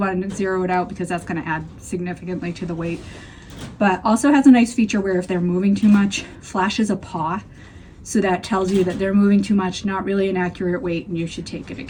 to zero it out because that's going to add significantly to the weight. But also has a nice feature where if they're moving too much, flashes a paw. So that tells you that they're moving too much, not really an accurate weight, and you should take it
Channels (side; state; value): both; identical; correlation 1.00